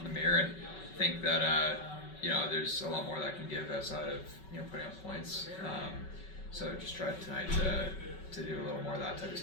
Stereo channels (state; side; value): late; right; 5.3 ms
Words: the mirror and think that there's a lot more that I can give outside of putting up points. So just try tonight to do a little more of that type of